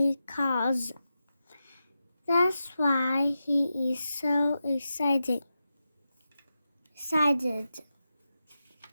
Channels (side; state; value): both; inverted; correlation -0.90